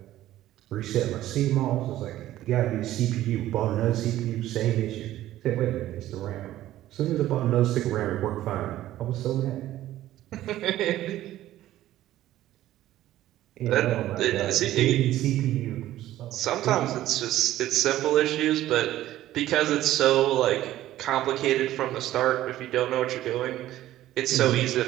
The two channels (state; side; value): quieter; left; 14.1 dB